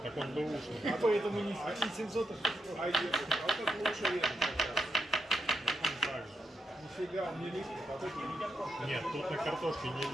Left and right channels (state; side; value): normal; both; correlation 0.84